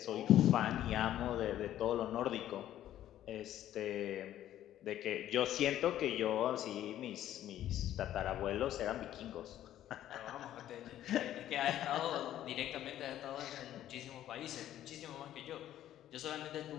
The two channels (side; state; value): right; quieter; 12.3 dB